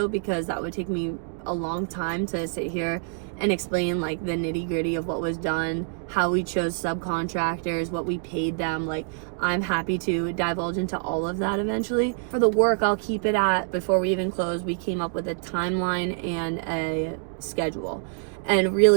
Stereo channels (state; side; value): silent; left; 61 dB below the other